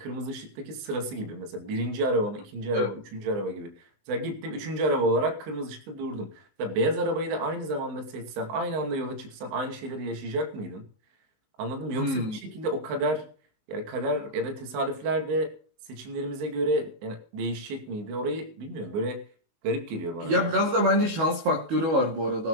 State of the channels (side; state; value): left; late; 19 ms